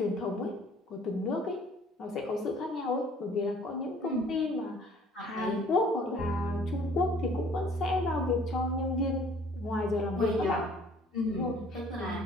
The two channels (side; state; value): both; normal; correlation 0.55